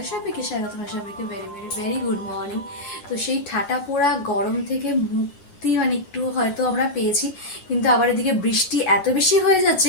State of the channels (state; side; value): late; right; 11 ms